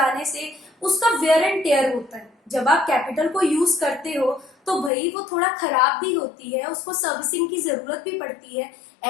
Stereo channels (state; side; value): drops out; right; at 4.9 s